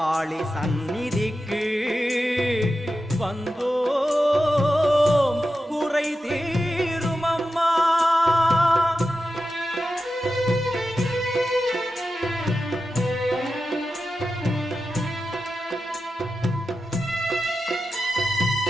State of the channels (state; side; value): normal; both; correlation 0.91